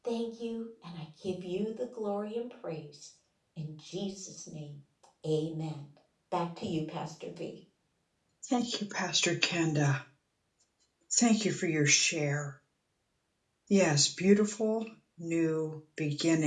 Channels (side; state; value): both; identical; correlation 1.00